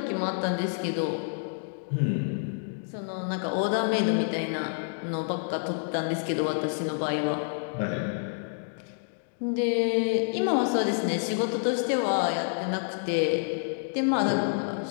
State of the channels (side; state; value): right; silent; digital silence